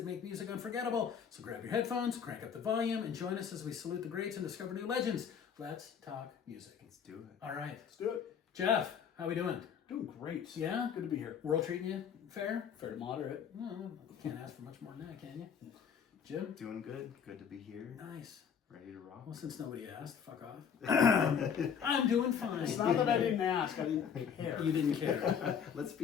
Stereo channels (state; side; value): quieter; right; 7.4 dB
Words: make music unforgettable. So grab your headphones, crank up the volume, and join us as we salute the greats and discover new legends. Let's talk music. Let's do it. All right. Let's do it. Jeff, how we doing? Doing great. Yeah? Good to be here. World treating you fair? Fair to moderate. No, can't ask for much more than that, can you? Jim? Doing good. Good to be here. Nice. Ready to rock. Well, since nobody asked, fuck off. I'm doing fine. It's not that I didn't ask. I didn't care. You didn't care. Let's